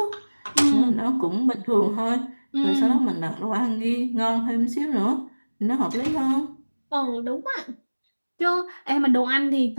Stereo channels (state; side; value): inverted; both; correlation -1.00